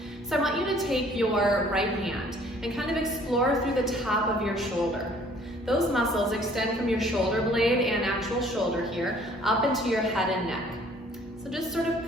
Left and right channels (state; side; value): normal; both; correlation 0.57